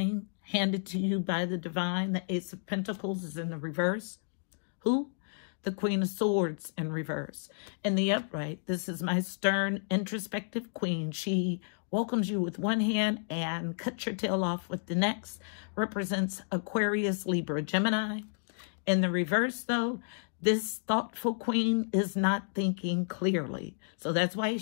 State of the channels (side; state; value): right; silent; digital silence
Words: handed to you by the divine. The Ace of Pentacles is in the reverse. Who? The Queen of Swords in reverse. In the upright, this is my stern, introspective queen. She welcomes you with one hand and cuts your tail off with the next. Represents Aquarius, Libra, Gemini. In the reverse, though, this thoughtful queen is not thinking clearly. So that's why